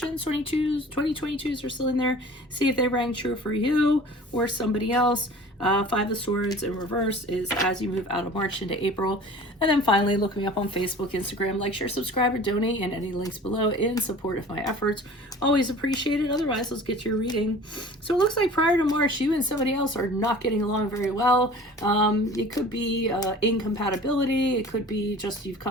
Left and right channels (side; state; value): both; normal; correlation 0.44